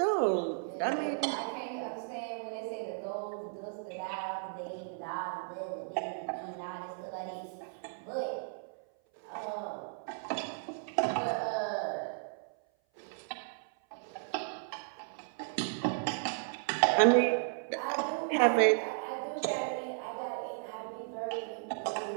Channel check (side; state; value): left; silent; 55 dB below the other